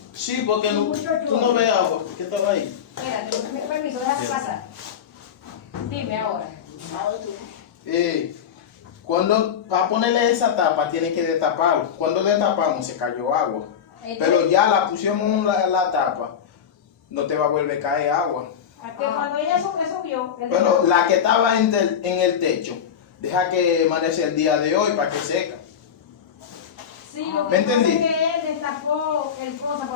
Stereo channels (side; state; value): right; quieter; 8.1 dB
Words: Sí, porque no, tú no ves agua. ¿Qué estaba ahí? Espérate, con permiso, déjame pasar. Dime ahora. Cuando, para ponerle esa tapa, tiene que destapar. Cuando destapamos, se cayó agua. Pero ya la pusimos la tapa, no te va a volver a caer agua. A que cuando ella subió. Pero la que estaba en el techo, deja que amanece el día de hoy para que seca. Sí, lo ¿Me que pasa es entendí? que él destapó el cosa